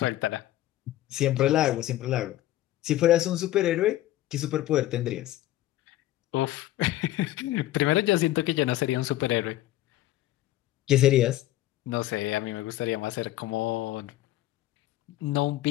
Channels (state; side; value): quieter; right; 15.0 dB